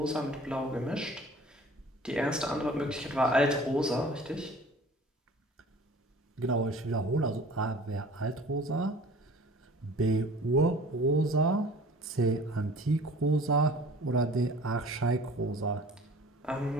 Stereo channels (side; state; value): both; normal; correlation 0.46